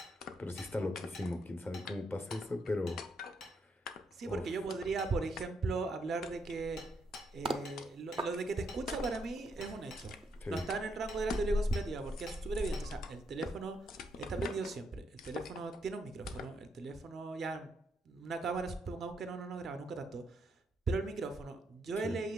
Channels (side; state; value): both; normal; correlation 0.77